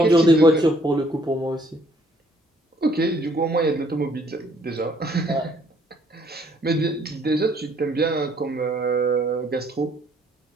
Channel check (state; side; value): normal; both; correlation 0.64